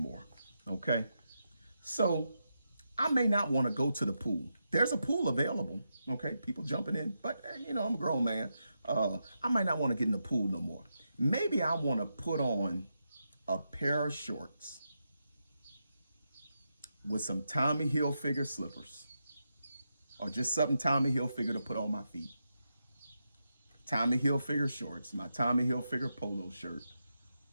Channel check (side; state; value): both; inverted; correlation -0.86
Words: okay? So I may not want to go to the pool. There's a pool available, okay? People jumping in, but you know, I'm a grown man. I might not want to get in the pool no more. Maybe I want to put on a pair of shorts with some Tommy Hilfiger slippers, or just something Tommy Hilfiger to put on my feet. Tommy Hilfiger shorts, my Tommy Hilfiger polo shirt,